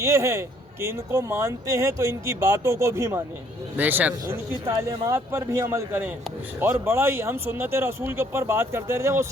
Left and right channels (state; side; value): normal; both; correlation 0.63